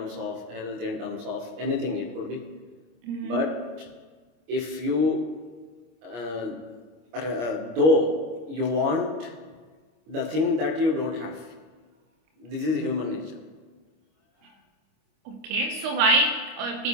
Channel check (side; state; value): left; late; 25 ms